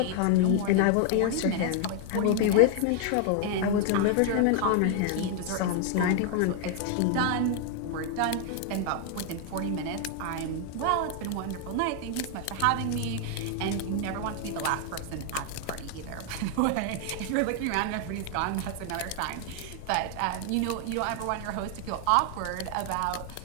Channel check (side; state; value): both; different; correlation 0.00